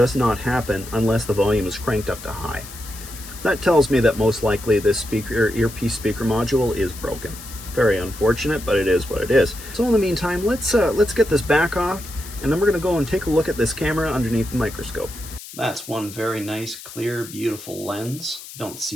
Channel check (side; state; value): left; noise; hiss, 14 dB below the sound